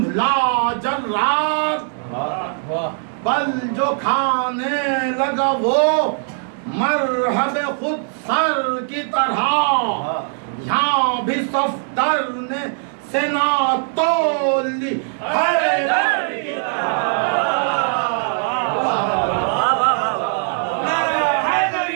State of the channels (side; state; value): left; silent; 66 dB below the other